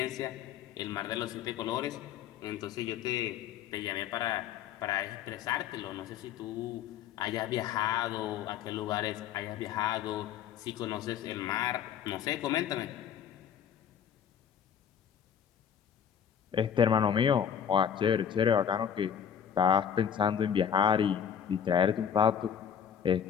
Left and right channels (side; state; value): right; quieter; 8.5 dB